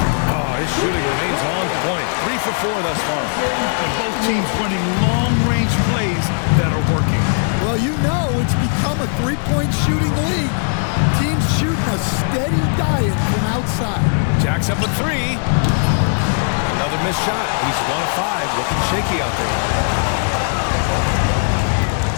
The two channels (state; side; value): silent; right; 66 dB below the other